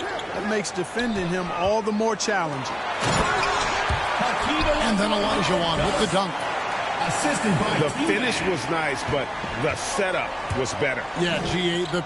makes defending him all the more challenging. And then Olajuwon with the dunk. The finish was nice, but the setup was better. Yeah, G.A., the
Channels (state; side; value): identical; both; correlation 1.00